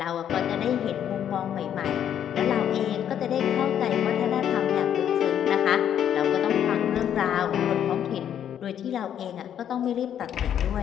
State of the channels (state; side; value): quieter; right; 9.7 dB